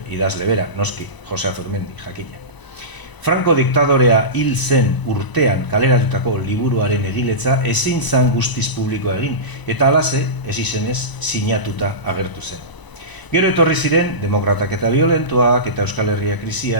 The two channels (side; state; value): right; late; 1.0 ms